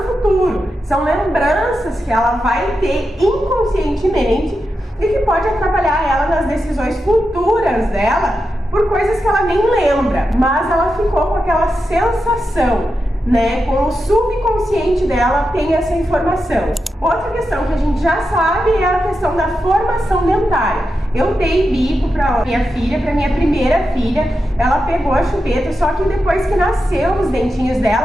futuro. São lembranças que ela vai ter inconscientemente e que pode atrapalhar ela nas decisões futuras dela por coisas que ela nem lembra, mas ela ficou com aquela sensação, né? Com o subconsciente dela tem essa informação. Outra questão que a gente já sabe é a questão da formação dentária. Eu dei bico para minha filha, para minha primeira filha, ela pegou a chupeta, só que depois que nasceu os dentinhos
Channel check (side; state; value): both; normal; correlation 0.88